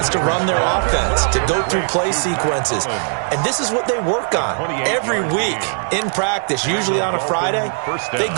to run their offense, to go through play sequences. And this is what they work on every week in practice, usually on a Friday. They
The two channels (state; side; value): silent; left; 57 dB below the other